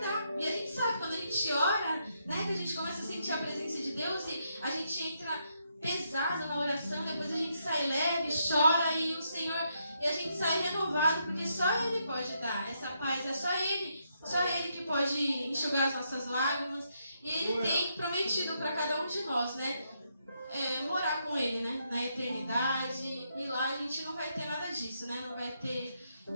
E a gente sabe, quando a gente ora, né, que a gente começa a sentir a presença de Deus e a gente entra pesado na oração, depois a gente sai leve, chora e o Senhor, e a gente sai renovado, porque só Ele pode dar essa paz, é só Ele que pode enxugar as nossas lágrimas. E Ele tem prometido para cada um de nós, né, morar com Ele, né, na eternidade. E lá a gente não vai ter nada disso, né, não vai ter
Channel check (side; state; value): both; inverted; correlation -0.78